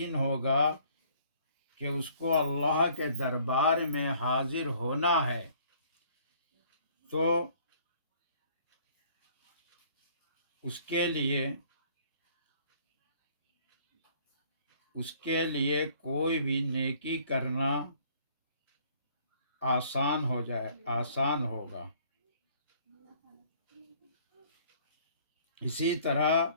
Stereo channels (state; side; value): inverted; both; correlation -0.58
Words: ہوگا کہ اس کو اللہ کے دربار میں حاضر ہونا ہے تو اس کے لیے کوئی بھی نیکی کرنا آسان ہوگا۔ اسی طرح